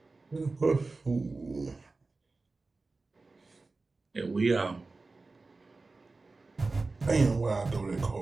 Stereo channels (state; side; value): quieter; left; 3.6 dB